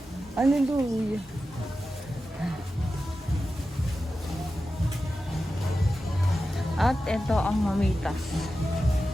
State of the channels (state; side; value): normal; both; correlation 0.92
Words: Hallelujah. At ito ang mamitas.